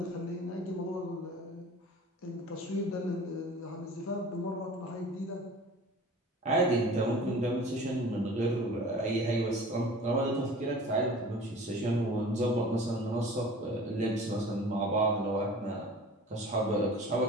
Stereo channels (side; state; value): both; normal; correlation 0.42